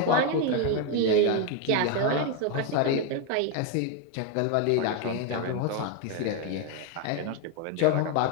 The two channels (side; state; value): both; different; correlation 0.01